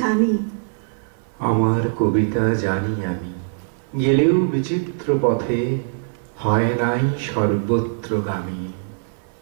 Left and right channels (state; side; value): silent; left; 55 dB below the other